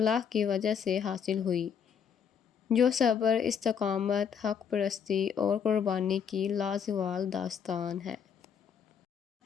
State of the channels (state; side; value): quieter; right; 7.4 dB